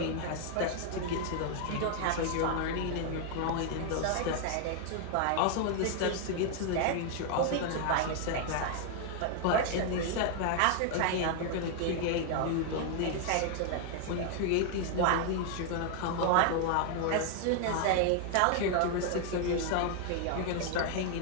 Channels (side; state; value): both; different; correlation 0.00